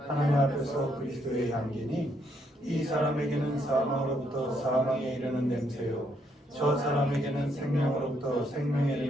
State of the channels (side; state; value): both; normal; correlation 0.73